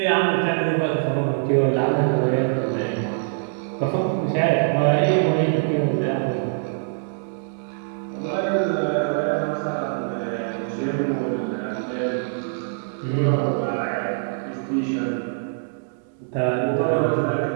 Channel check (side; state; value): left; silent; 63 dB below the other